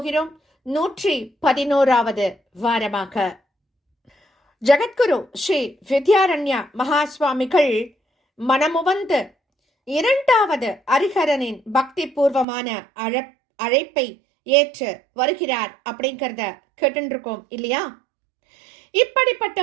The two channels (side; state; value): left; drops out; at 12.5 s